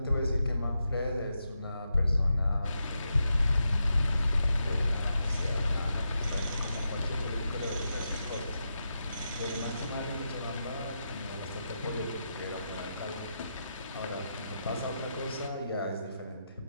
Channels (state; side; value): inverted; both; correlation -0.86